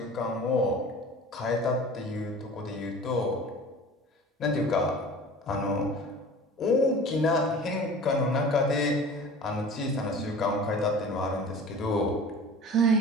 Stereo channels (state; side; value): normal; both; correlation 0.40